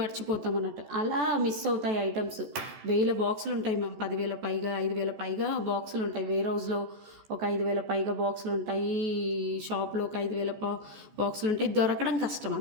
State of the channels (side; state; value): left; late; 14 ms